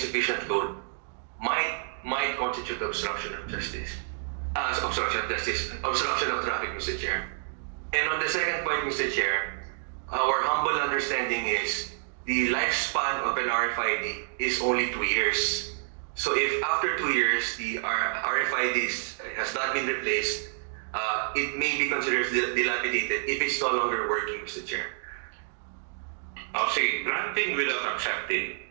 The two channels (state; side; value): silent; left; digital silence